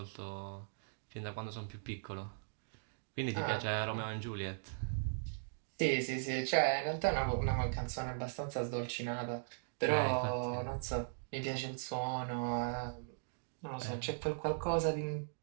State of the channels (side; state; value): left; silent; digital silence